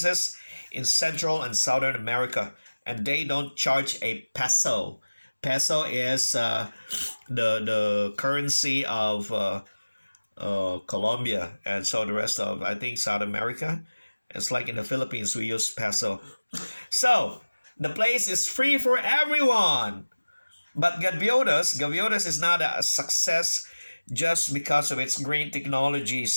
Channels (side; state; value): both; inverted; correlation -1.00